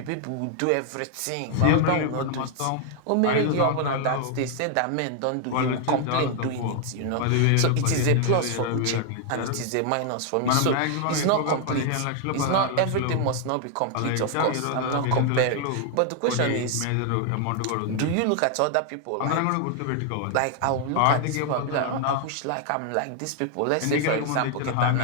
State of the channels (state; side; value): different; both; correlation 0.00